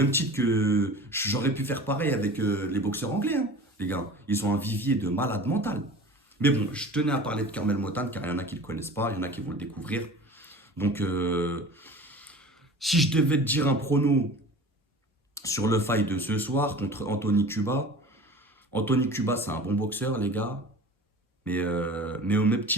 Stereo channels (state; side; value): normal; both; correlation 0.39